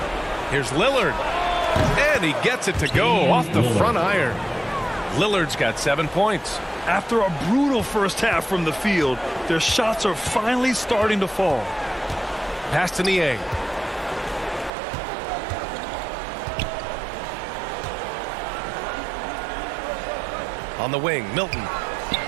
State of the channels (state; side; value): drops out; left; at 14.7 s